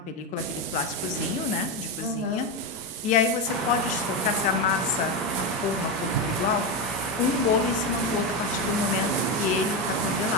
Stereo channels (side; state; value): both; normal; correlation 0.12